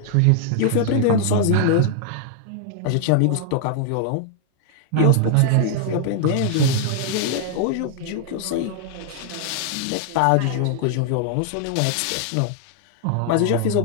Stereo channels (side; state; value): both; different; correlation 0.00